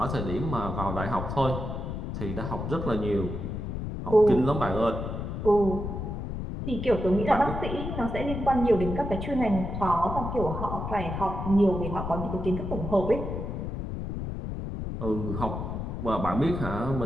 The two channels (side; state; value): left; noise; rumble, 5 dB below the sound